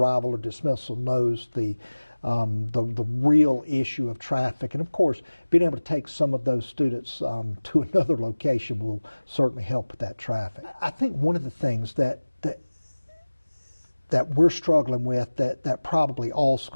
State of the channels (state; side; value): inverted; both; correlation -1.00